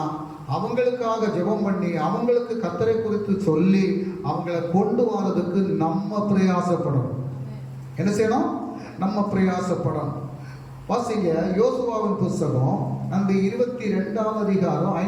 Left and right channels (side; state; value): both; identical; correlation 1.00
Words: அவங்களுக்காக ஜெபம் பண்ணி அவங்களுக்கு கர்த்தரை குறித்து சொல்லி அவங்கள கொண்டு வரதுக்கு நம்ம பிரயாசப்படணும். என்ன செய்யணும்? நம்ம பிரயாசப்படணும். வாசிங்க, யோசுவாவின் புஸ்தகம் அந்த 22ஆம் அதிகாரம்